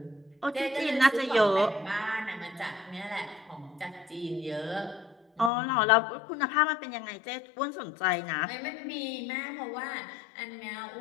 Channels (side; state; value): right; drops out; at 5.5 s